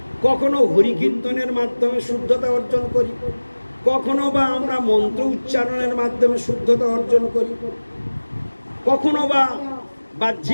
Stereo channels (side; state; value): both; inverted; correlation -1.00